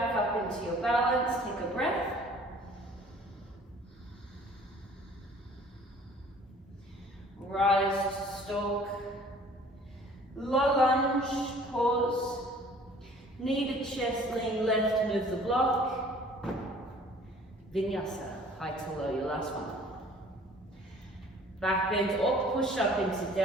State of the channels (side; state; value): both; normal; correlation 0.52